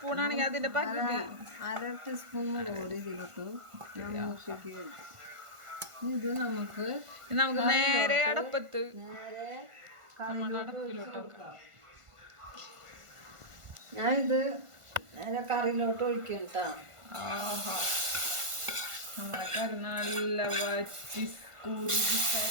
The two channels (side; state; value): left; late; 1.4 ms